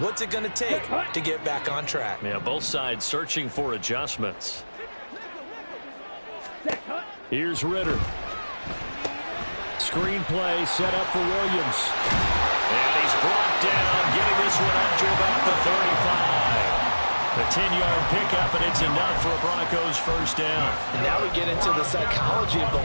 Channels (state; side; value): inverted; both; correlation -1.00